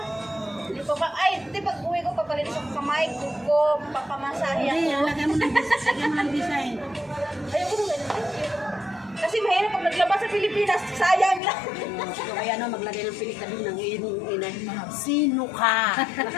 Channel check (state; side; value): drops out; right; at 11.4 s